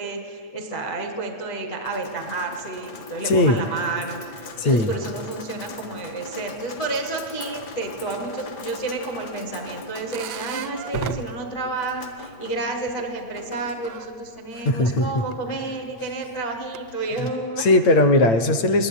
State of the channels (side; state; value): right; late; 8.7 ms